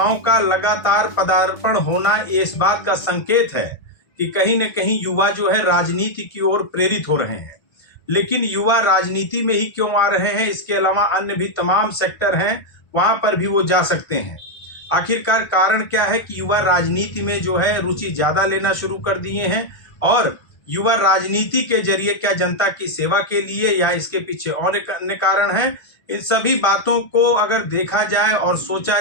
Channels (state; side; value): late; right; 1.6 ms